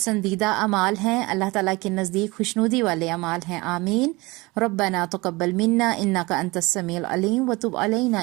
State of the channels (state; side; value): quieter; left; 23.3 dB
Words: اعمال ہیں، اللہ تعالیٰ کے نزدیک خوشنودی والے اعمال ہیں۔ آمین۔ ربنا تقبل منا انک انت السمیع العلیم وتب علینا